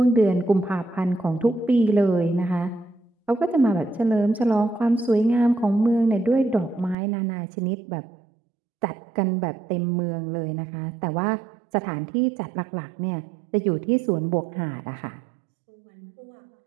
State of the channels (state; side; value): drops out; left; at 7.0 s